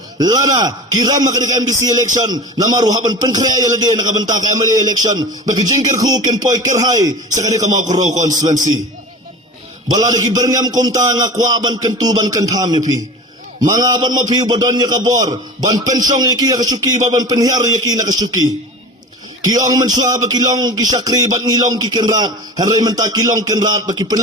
Lana kiram ka di NBC election. Namaru haban penkrea ya lagi nakabenta ka MLA election. Baki jing kerku kin poy kerhai sa kanira mo koro constituency. Balada ki berngam kumta nga kwaban kentuban kentam pi. Mga ban mapiu badon niya kabor, ban pensong yaki nakasuki, ban penhiar yaki nakasuki. Kiong mensua ba kilong kisakri, ban ngilong kikenrat, haray menta kilong kenrat, baki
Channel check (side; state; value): both; normal; correlation 0.34